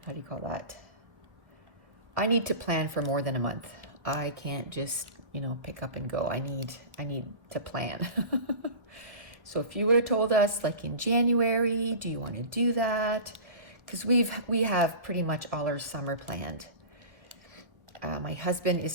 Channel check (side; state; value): left; late; 1.2 ms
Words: do you call that? I need to plan for more than a month. I can't just, pick up and go. I need to plan. So if you would have told us like in January, do you want to do that? Because we have pretty much all our summer planned. My husband